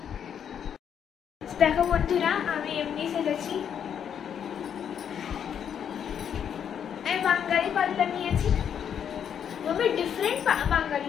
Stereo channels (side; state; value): right; quieter; 8.4 dB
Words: দেখো বন্ধুরা, আমি এমনি সেজেছি। আমি বাঙালি পাল্লা নিয়েছি, মাম্মি ডিফারেন্ট বাঙালি